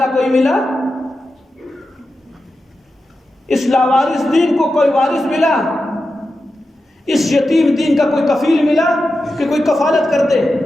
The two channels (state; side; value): normal; both; correlation 0.91